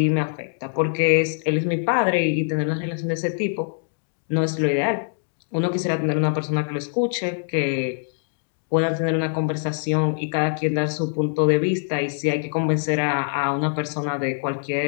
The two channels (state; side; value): silent; right; digital silence